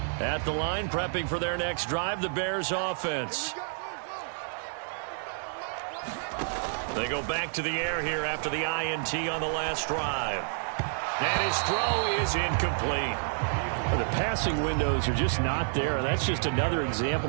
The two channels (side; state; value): left; silent; digital silence